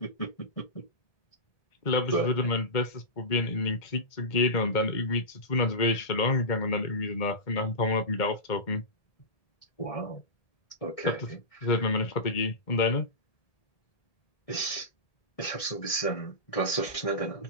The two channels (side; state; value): right; late; 1.8 ms